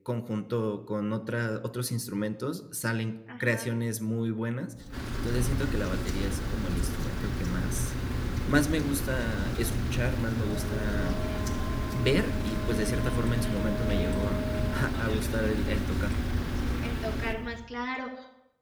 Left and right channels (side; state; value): both; identical; correlation 1.00